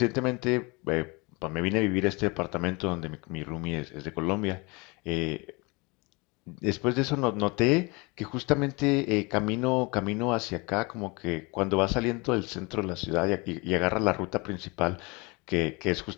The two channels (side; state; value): right; quieter; 27.4 dB